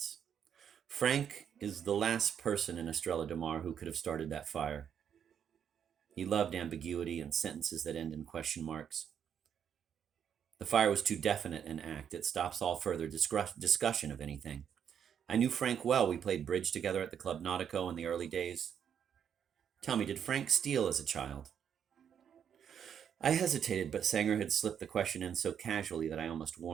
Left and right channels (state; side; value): quieter; left; 8.3 dB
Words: Frank is the last person in Estrella de Mar who could have started that fire. He loved ambiguity and sentences that end in question marks. The fire was too definite an act. It stops all further discussion of anything. I knew Frank well. We played bridge together at the Club Nautico in the early days. Tell me, did Frank steal as a child? I hesitated, but Sanger had slipped the question in so casually that I almost